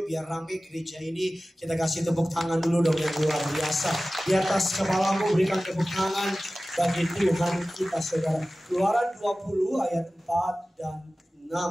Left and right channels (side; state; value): both; normal; correlation 0.96